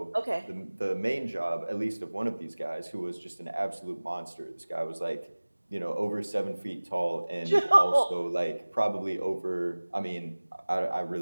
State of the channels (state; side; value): inverted; both; correlation -1.00